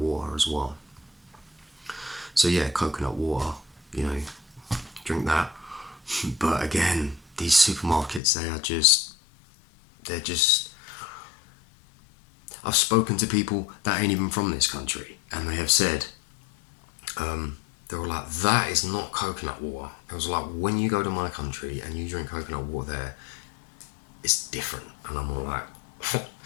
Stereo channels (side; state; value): right; drops out; at 8.2 s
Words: as well. So yeah, coconut water, drink that. But again, these supermarkets, they're just I've spoken to people that ain't even from this country, and they have said, they were like, that is not coconut water. It was like, when you go to my country and you drink coconut water there, it's different. And I'm all like,